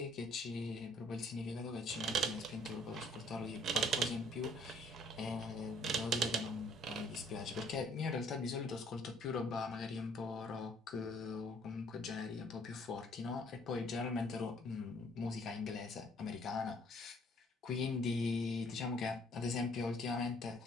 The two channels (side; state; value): both; normal; correlation 0.61